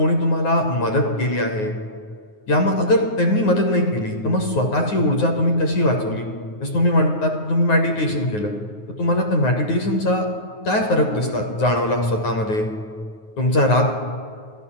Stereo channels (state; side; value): late; right; 9.5 ms